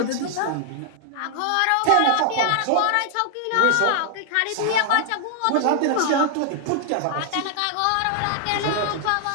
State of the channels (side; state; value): both; different; correlation 0.00